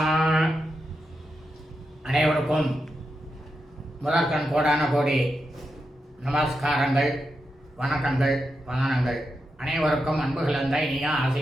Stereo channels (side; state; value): both; normal; correlation 0.87